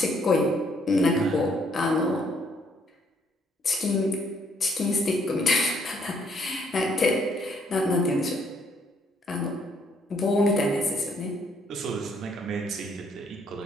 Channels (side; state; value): both; normal; correlation 0.68